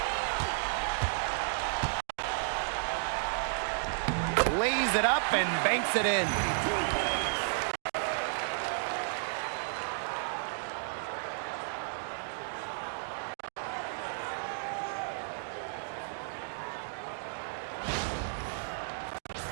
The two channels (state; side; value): silent; left; digital silence